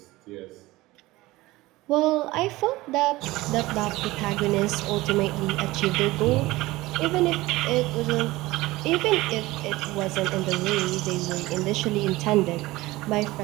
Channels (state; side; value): quieter; left; 19.3 dB